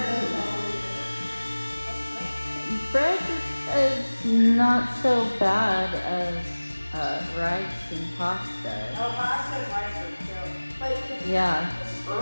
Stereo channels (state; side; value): inverted; both; correlation -1.00